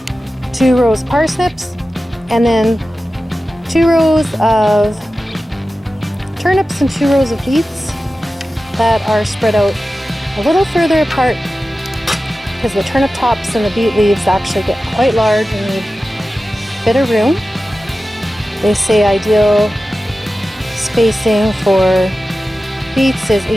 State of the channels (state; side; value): normal; both; correlation 0.94